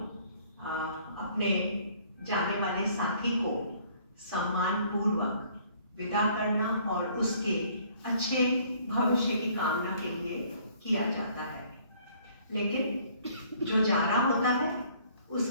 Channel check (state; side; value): inverted; both; correlation -0.59